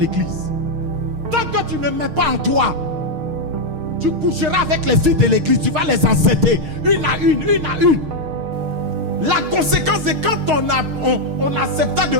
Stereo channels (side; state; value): left; late; 6.5 ms